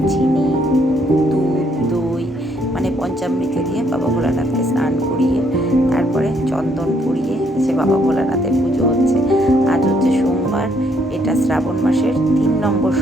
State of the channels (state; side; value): normal; both; correlation 0.70